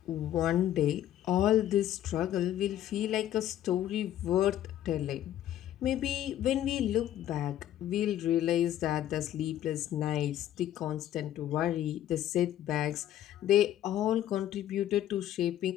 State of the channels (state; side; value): quieter; right; 12.1 dB